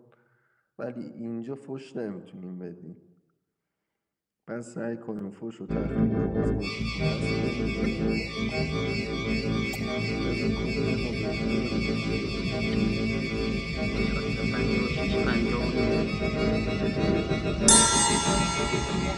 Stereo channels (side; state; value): both; identical; correlation 1.00